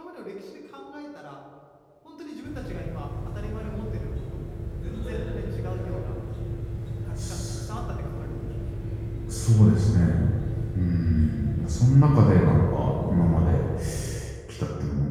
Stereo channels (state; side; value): identical; both; correlation 1.00